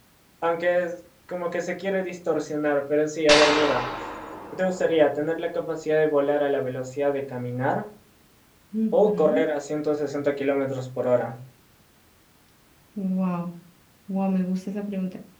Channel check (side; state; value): both; identical; correlation 1.00